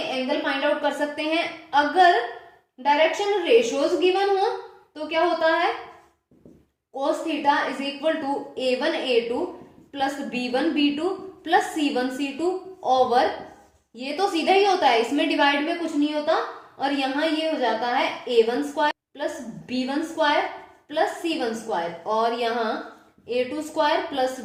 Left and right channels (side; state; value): both; identical; correlation 1.00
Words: फाइंड आउट कर सकते हैं। अगर डायरेक्शन रेशियोज गिवन हो तो क्या होता है, cos theta is equal to A1 A2 plus B1 B2 plus C1 C2 over, ये तो सीधा ही होता है, इसमें डिवाइड में कुछ नहीं होता, और यहां ये हो जाता है A1 square plus B1 square plus C1 square, और यहाँ A2 square plus